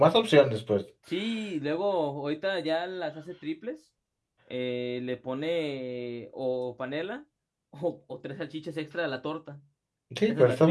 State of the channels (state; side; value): identical; both; correlation 1.00